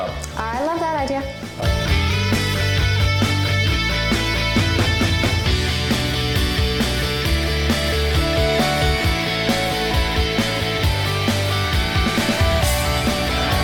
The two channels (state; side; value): identical; both; correlation 1.00